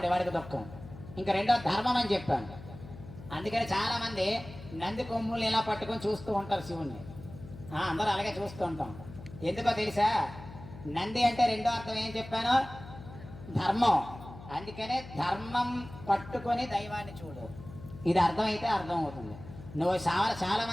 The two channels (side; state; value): left; noise; hum, 15 dB below the sound